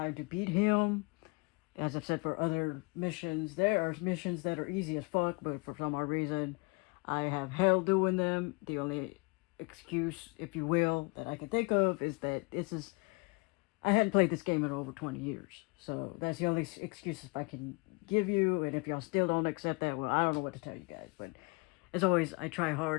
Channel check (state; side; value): quieter; right; 29.6 dB